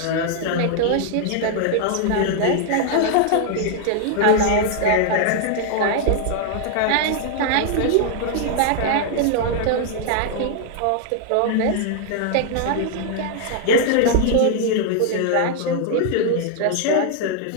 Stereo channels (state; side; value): different; both; correlation 0.00